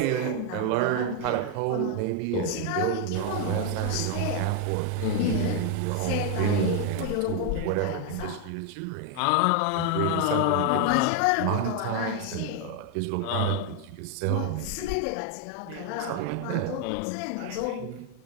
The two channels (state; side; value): different; both; correlation 0.01